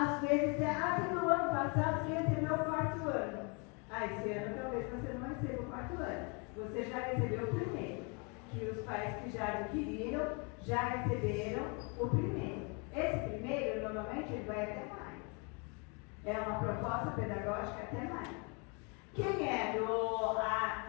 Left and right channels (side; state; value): right; quieter; 33.8 dB